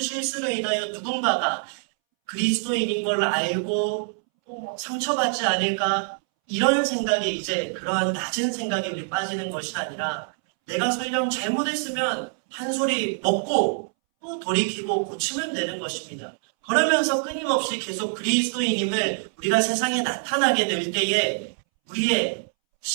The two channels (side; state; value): left; silent; 62 dB below the other